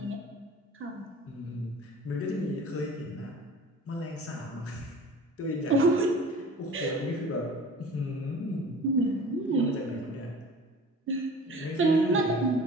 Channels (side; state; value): both; normal; correlation 0.42